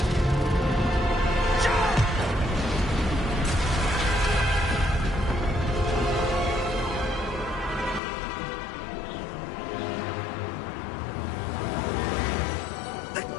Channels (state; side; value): drops out; right; at 8.0 s